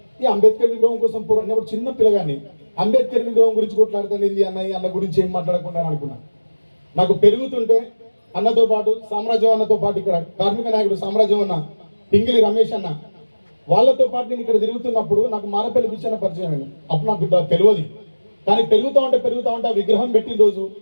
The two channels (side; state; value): both; inverted; correlation -1.00